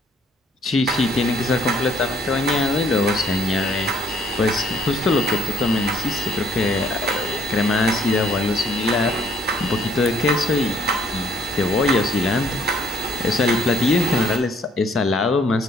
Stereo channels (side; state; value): both; normal; correlation 0.64